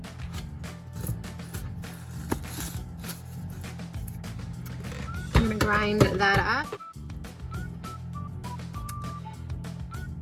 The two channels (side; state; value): both; identical; correlation 1.00